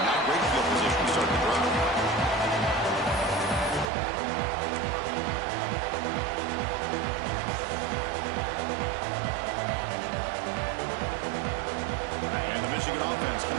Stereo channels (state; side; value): drops out; left; at 3.9 s